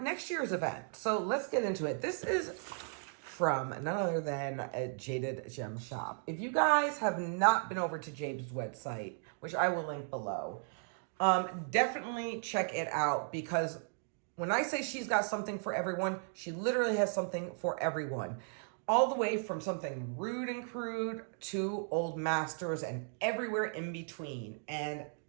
next year's event. So let's get into it. This is from none other than a Jaded Gem Shop. If you guys have not been over to Jade's website, which I will link below, definitely check it out, because when I say she's got something for everyone, she literally has something for everyone. All the way from something rude and crude to old masters and everywhere in between. And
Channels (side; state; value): left; silent; 54 dB below the other